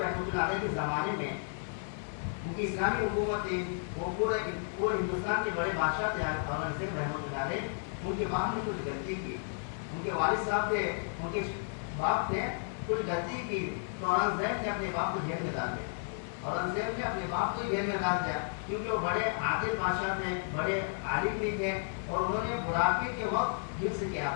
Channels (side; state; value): right; silent; digital silence